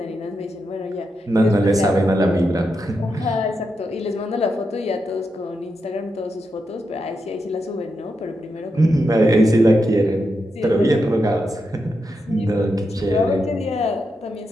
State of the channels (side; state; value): both; normal; correlation 0.85